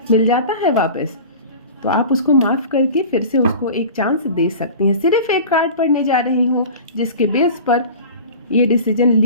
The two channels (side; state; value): both; inverted; correlation -0.37